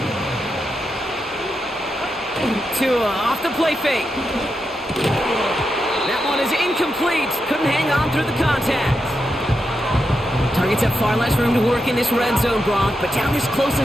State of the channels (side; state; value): both; normal; correlation 0.86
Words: Off the play fake. That one is incomplete. Couldn't hang on through the contact. Targets have far less room to work in this red zone, Gronk, but down this close